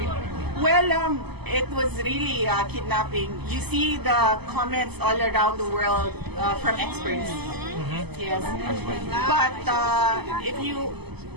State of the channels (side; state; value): left; late; 0.98 ms